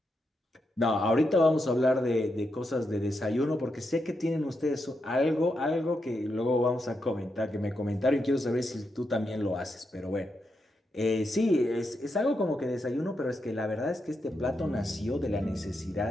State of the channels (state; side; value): normal; both; correlation 0.84